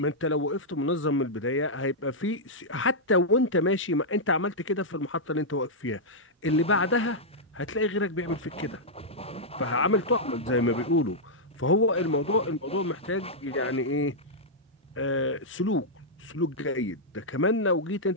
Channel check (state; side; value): normal; both; correlation -0.07